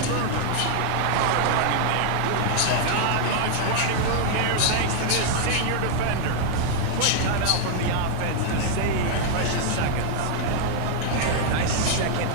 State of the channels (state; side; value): different; both; correlation 0.00